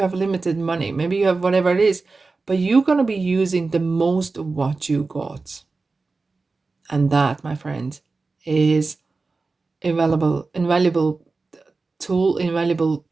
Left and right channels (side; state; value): left; quieter; 3.9 dB